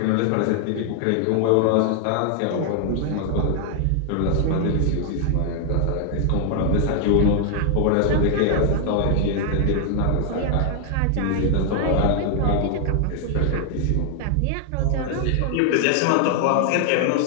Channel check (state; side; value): different; both; correlation 0.00